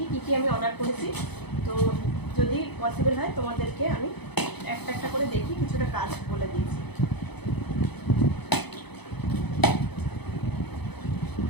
কি কি আমি অর্ডার করেছি। তো যদি পসিবল হয় তোমাদেরকে আমি একটা একটা করে দেখি কিছুটা কাজ বলে দিয়েছি।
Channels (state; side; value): late; right; 0.98 ms